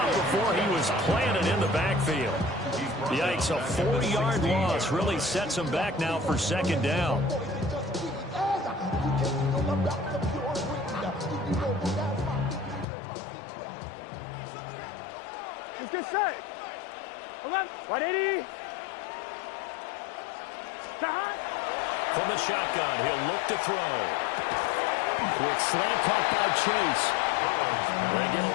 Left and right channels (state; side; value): drops out; right; at 12.9 s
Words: before he was planted in the backfield. Yikes, a 40-yard loss really sets him back now for second down. Let's get set. 11. 180. From the shotgun, he'll look to throw. Quick slant caught by Chase. They get